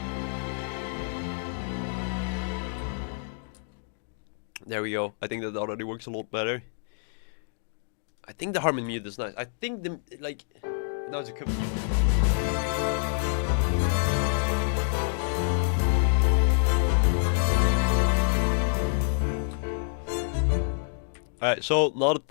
There we go. I think that already works a lot better. I think the harmony mute is nice. I think the, like, now it's a cup. Alright, so now the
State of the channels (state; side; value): silent; right; digital silence